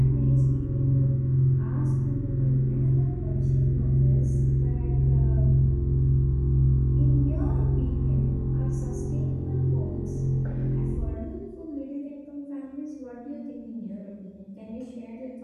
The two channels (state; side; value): identical; both; correlation 1.00